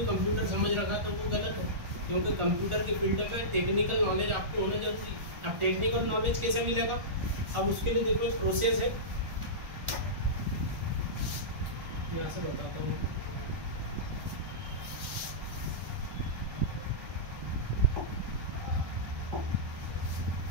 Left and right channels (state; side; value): late; left; 1.4 ms